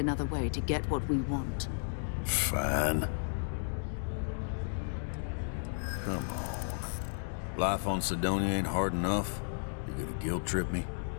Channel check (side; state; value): right; silent; digital silence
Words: way to get what we want. Fine. Come on. Life on Sidonia ain't hard enough. You're gonna guilt trip me?